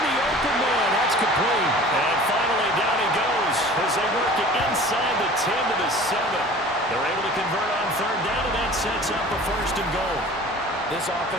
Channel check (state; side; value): normal; both; correlation 0.44